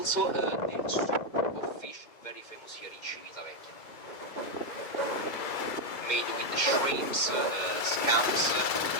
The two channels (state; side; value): late; right; 2.1 ms